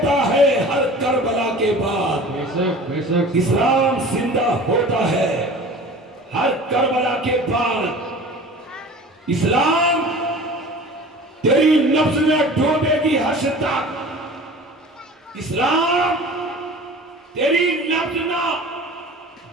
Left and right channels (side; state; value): both; normal; correlation 0.41